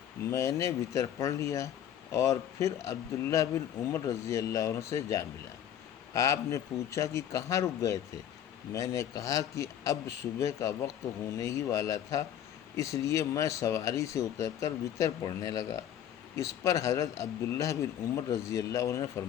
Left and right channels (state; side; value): quieter; right; 10.2 dB